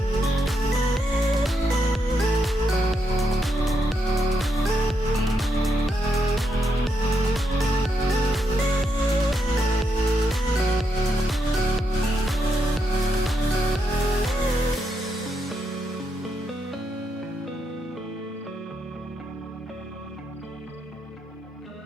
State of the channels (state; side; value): normal; both; correlation 0.81